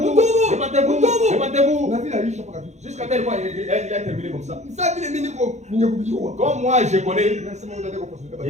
Jusqu'à tel point, il a terminé comme ça. Comme moi, je connais,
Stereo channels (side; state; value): left; late; 0.33 ms